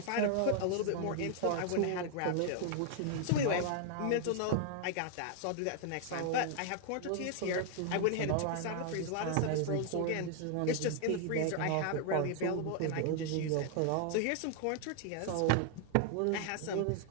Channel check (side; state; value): both; different; correlation 0.00